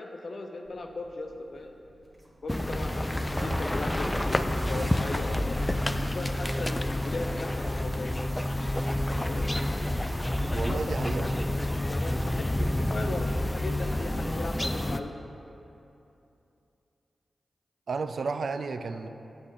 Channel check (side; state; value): both; normal; correlation 0.96